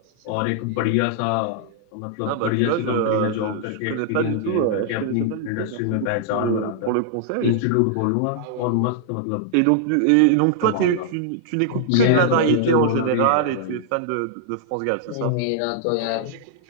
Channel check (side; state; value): both; different; correlation -0.01